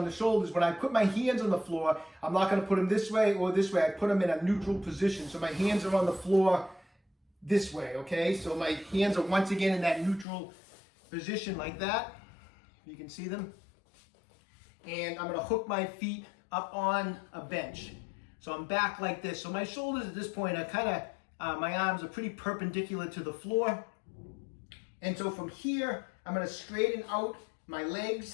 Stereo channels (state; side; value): drops out; right; at 10.2 s